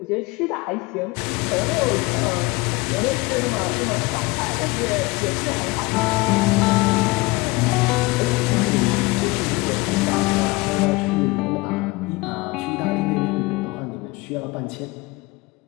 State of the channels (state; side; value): quieter; right; 23.4 dB